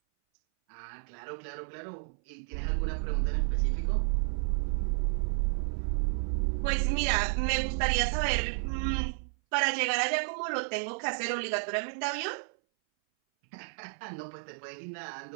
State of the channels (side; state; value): left; silent; 57 dB below the other